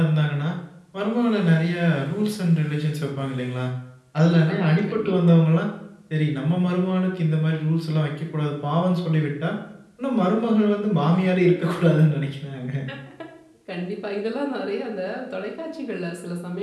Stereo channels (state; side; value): identical; both; correlation 1.00